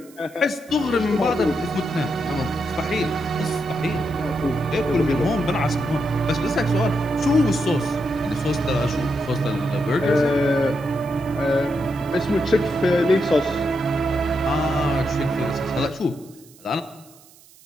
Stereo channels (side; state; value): right; noise; hiss, 26 dB below the sound